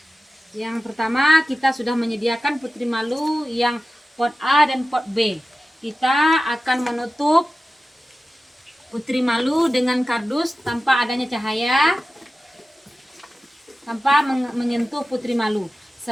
Yang pertama, kita sudah menyediakan putri malu yang pot A dan pot B. Kita akan menutup putri malu dengan kardus tanpa adanya cahaya, tanpa menyentuh putri malu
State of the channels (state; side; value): normal; both; correlation 0.95